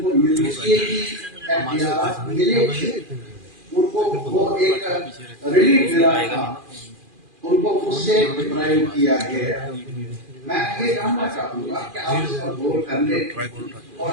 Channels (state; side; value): late; left; 2.4 ms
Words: मिलेगी, उनको वो एक रिलीफ मिला था, उनको उससे डिप्राइव किया गया. मैं ये जानना चाहूंगा कि आप इस पर गौर कर ले, और